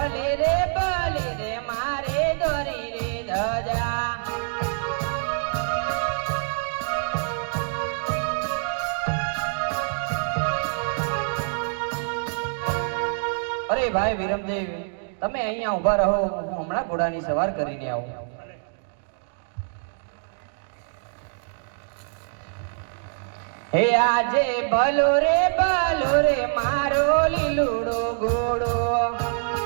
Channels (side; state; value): left; silent; digital silence